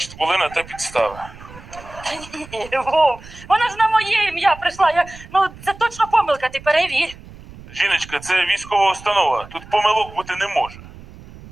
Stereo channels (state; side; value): noise; right; rumble, 18 dB below the sound